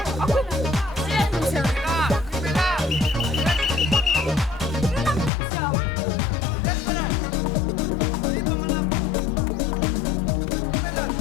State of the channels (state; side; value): drops out; right; at 5.3 s